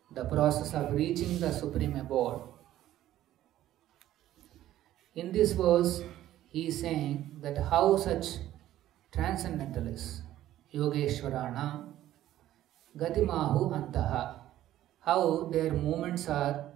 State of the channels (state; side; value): quieter; left; 13.4 dB